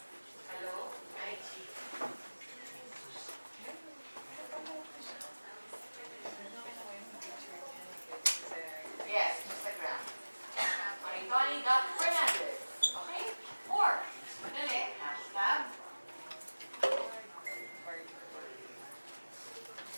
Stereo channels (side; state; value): both; inverted; correlation -1.00